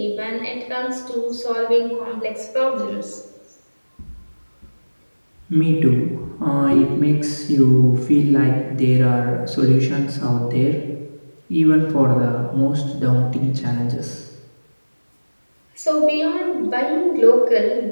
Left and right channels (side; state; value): both; inverted; correlation -1.00